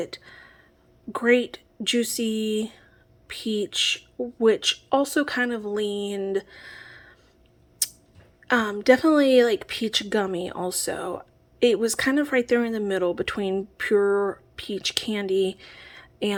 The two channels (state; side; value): identical; both; correlation 1.00